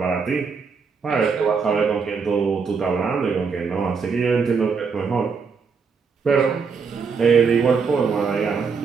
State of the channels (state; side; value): quieter; left; 5.5 dB